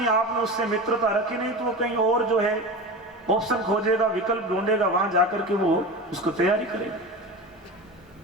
आपने उससे मित्रता रखी नहीं, तो वो कहीं और जो है ऑप्शन खोजेगा, विकल्प ढूंढेगा, वहां जाकर के वो उसको तैयारी करेगा।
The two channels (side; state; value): both; normal; correlation 0.28